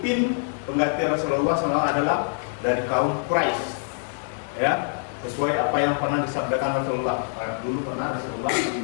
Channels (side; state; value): right; silent; digital silence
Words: pengganti Rasulullah SAW adalah dari kaum Quraisy, ya, sesuai apa yang pernah disabdakan Rasulullah. Dulu pernah Rasulullah,